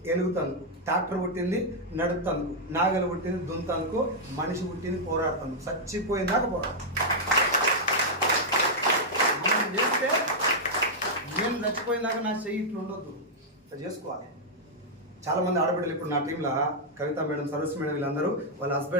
ఎలుగుతందుకు, ట్రాక్టర్ పుట్టింది నడుపుతందుకు, నాగలు పుట్టింది దున్నందుకు, మనిషి పుట్టింది పోరాడుతందుకు. చచ్చిపోయిందాక పోరాడు. మనం చేస్తే నేను చచ్చిపోయిందాక నా చెయ్యి ఇట్లా ఉండొద్దు, ఇట్లా చేసుకోవాలి. చాలామంది ఆడబిడ్డలు ఇప్పుడు నా టీంలో కవిత మేడం, సరస్సు మేడం, వీళ్ళందరూ వాళ్ళ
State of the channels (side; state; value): both; normal; correlation -0.04